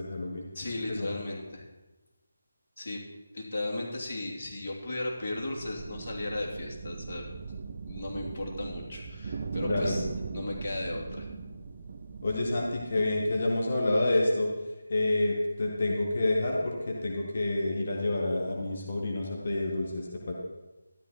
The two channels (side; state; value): both; inverted; correlation -0.93